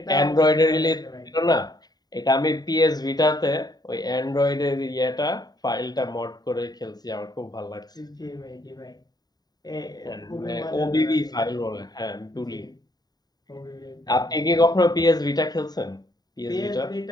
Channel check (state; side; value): late; right; 0.19 ms